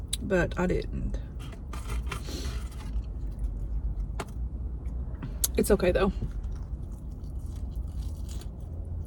but I didn't. It's okay though.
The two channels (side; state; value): both; identical; correlation 1.00